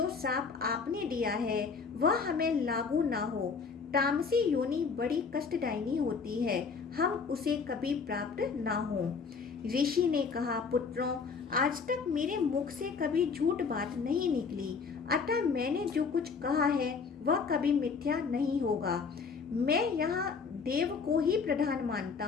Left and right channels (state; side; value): quieter; right; 5.3 dB